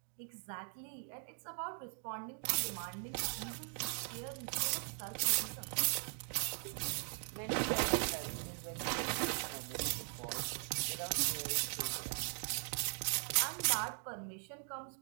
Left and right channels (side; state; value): left; silent; 51 dB below the other